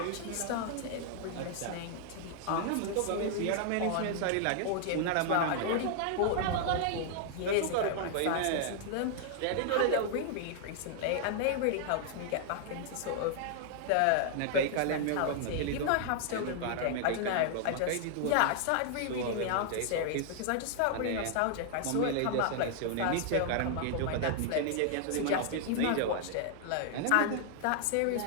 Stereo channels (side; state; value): both; different; correlation 0.00